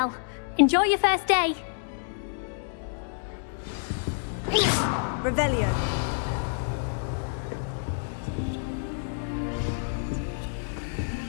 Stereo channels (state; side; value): silent; right; digital silence